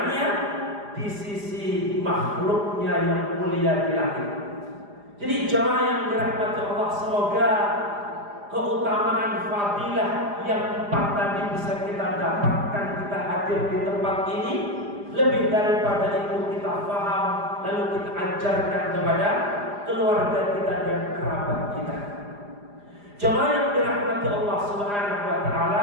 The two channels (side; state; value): left; late; 4.9 ms